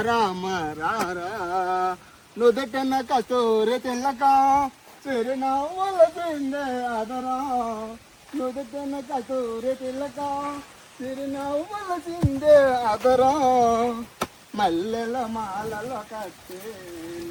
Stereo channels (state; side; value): identical; both; correlation 1.00